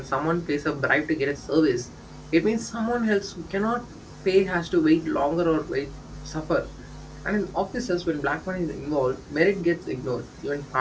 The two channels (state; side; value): identical; both; correlation 1.00